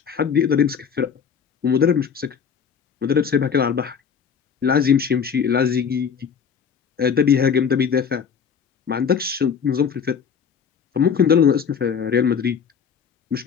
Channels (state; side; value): quieter; right; 6.9 dB